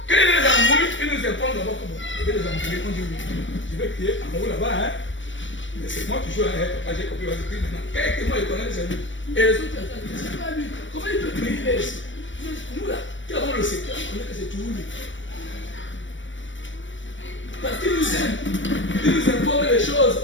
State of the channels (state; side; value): late; right; 0.55 ms